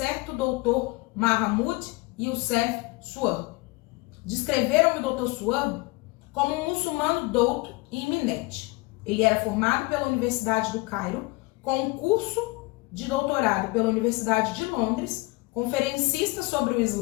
doutor Mahmoud Youssef Suab. Descreveram-me o Dr. Suab como um muçulmano douto e iminente. Ele era formado pela Universidade do Cairo, com um curso de doutorado pela Universidade de Londres, conferencista sobre o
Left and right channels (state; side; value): quieter; right; 24.2 dB